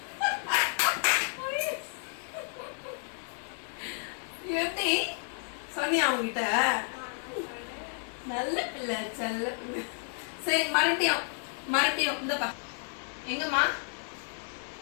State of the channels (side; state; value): right; silent; 57 dB below the other